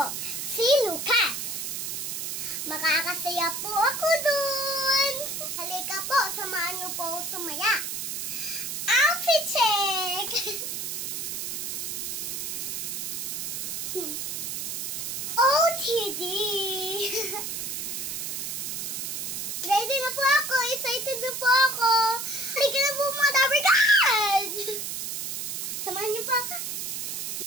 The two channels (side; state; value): right; noise; hiss, 4 dB below the sound